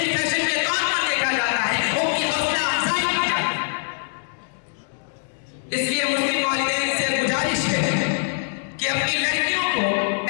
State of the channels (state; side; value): silent; right; digital silence